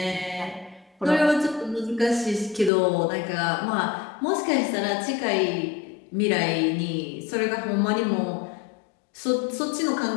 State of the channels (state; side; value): drops out; right; at 2.7 s